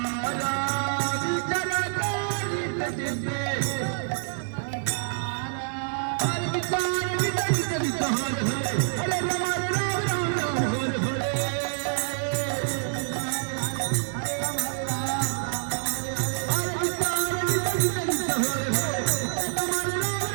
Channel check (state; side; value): silent; left; digital silence